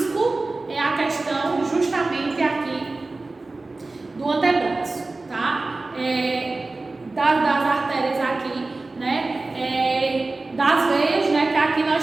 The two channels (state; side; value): quieter; left; 3.3 dB